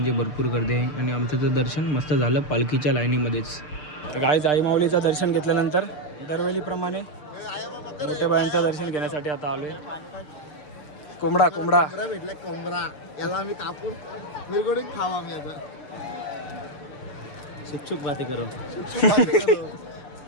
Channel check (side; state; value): right; late; 6.7 ms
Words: भरपूर गर्दी आहे. आणि आमचं तर दर्शन मस्त झालं पालखीच्या लाईनीमध्येच. तर गाईज आई माऊलीचं दर्शन घेतल्यानंतर दरवेळीप्रमाणे मोठ्या बायांचं दर्शन घेण्यासाठी आता आलोय. कोंबडा कोंबडा भेटला. कोंबडा याला आम्ही कापून मिरगडून खावा आम्ही आता. शुकशुक बाते करू.